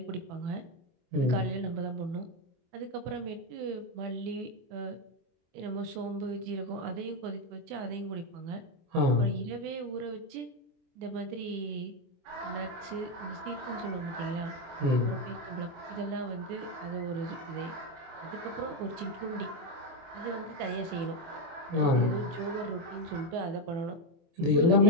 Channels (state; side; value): late; left; 24 ms